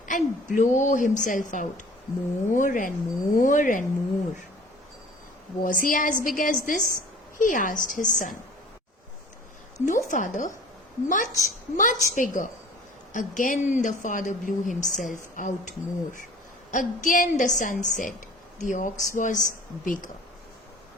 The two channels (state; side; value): normal; both; correlation 0.47